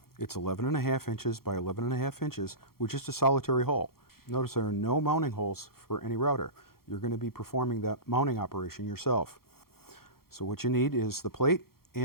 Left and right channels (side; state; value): right; late; 0.94 ms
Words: It's 11.5 inches by 11.5 inches with just a solitary hole. Notice there are no mounting holes for any router. You're going to be performing that mounting operation yourself. So what you need is the plate